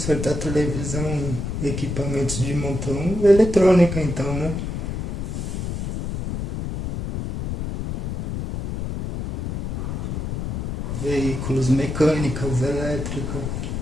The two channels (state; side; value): noise; left; rumble, 4 dB below the sound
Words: televisão e equipamentos de montão, eletrônica então, né? Veículos, mecânicas, elétrica,